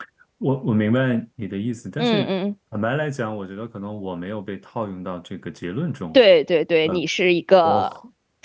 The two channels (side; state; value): both; identical; correlation 1.00